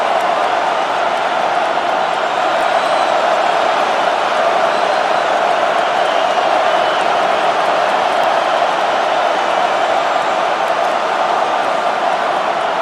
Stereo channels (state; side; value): identical; both; correlation 1.00